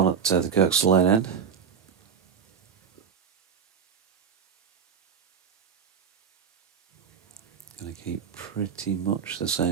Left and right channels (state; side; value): quieter; left; 7.0 dB